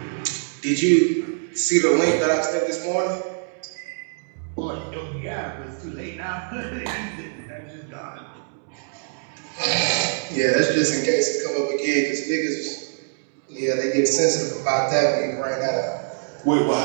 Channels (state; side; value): silent; left; 63 dB below the other